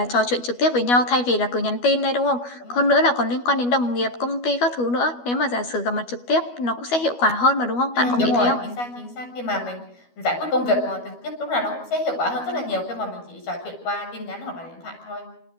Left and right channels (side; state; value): right; late; 12 ms